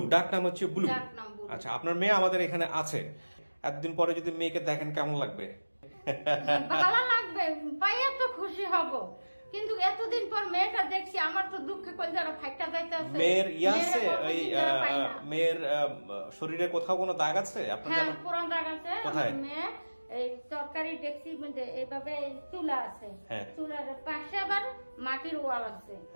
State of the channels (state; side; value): inverted; both; correlation -1.00